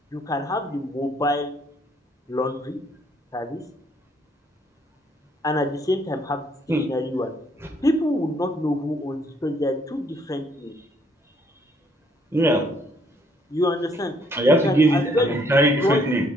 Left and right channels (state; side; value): normal; both; correlation 0.66